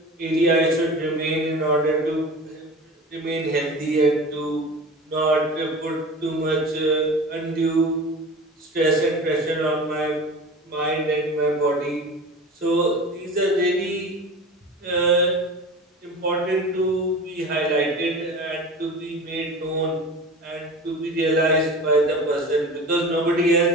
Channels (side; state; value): both; normal; correlation 0.35